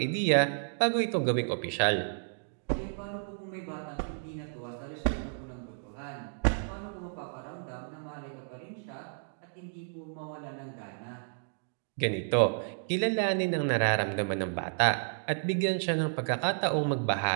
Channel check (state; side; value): silent; left; digital silence